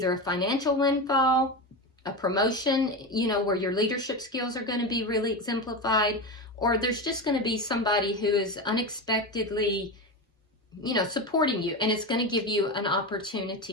a financial windfall, a promotion, where your leadership skills are going to be really exemplified, or there's just going to be somebody who is unexpectedly, supporting you, and it's going to give you an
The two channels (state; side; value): normal; both; correlation 0.20